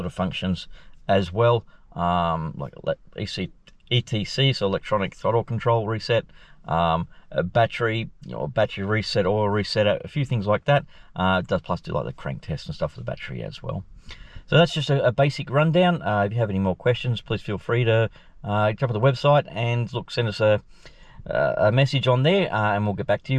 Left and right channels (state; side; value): identical; both; correlation 1.00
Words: of functions as well, like ETC, so electronic throttle control reset, a battery, battery reset, oil reset, a few things like that. It does plus do like the crank test and stuff for the battery as well. So that's just a basic rundown. If you have any more questions, please feel free to jump on the website and send us a message on there, and we'll get back to